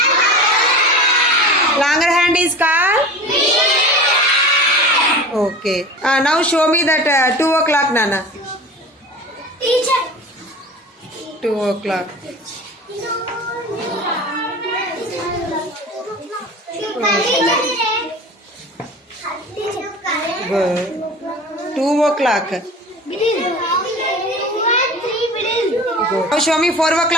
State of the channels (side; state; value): both; normal; correlation 0.36